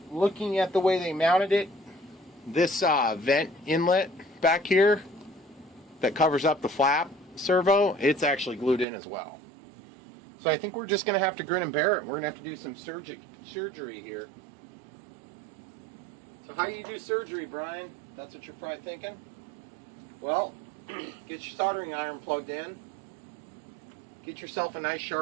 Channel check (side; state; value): left; drops out; at 8.8 s